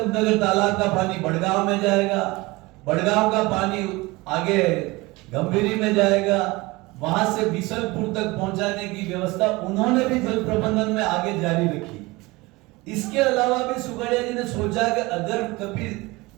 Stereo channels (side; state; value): left; quieter; 22.5 dB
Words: तालाब का पानी बड़गांव में जाएगा, बड़गांव का पानी आगे गंभीरी में जाएगा, वहां से बिसलपुर तक पहुंचाने की व्यवस्था उन्होंने भी जल प्रबंधन में आगे जारी रखी। इसके अलावा भी सुखड़िया जी ने सोचा कि अगर कभी